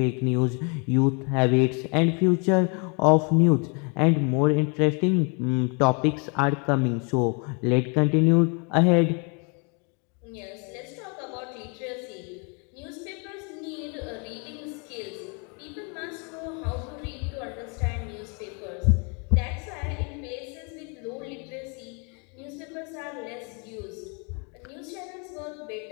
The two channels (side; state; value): right; quieter; 35.2 dB